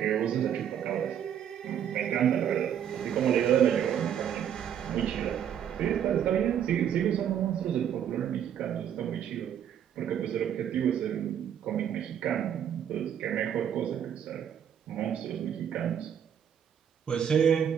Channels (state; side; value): quieter; left; 9.2 dB